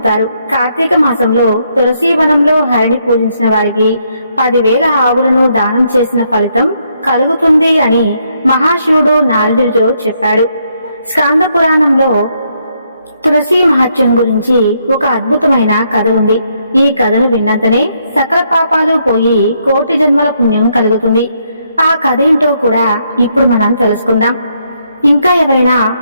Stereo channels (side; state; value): both; inverted; correlation -0.75